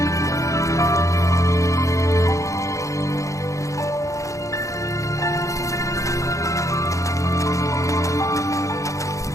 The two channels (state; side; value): late; right; 0.15 ms